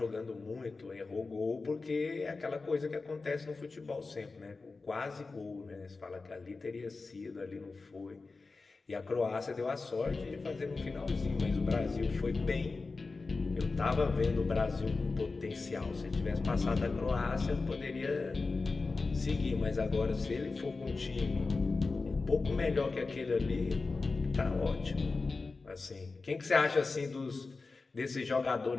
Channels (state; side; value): quieter; right; 3.9 dB